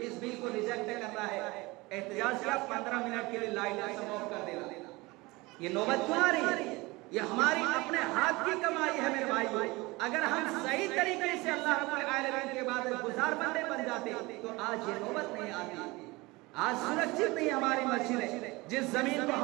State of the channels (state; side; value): quieter; left; 22.8 dB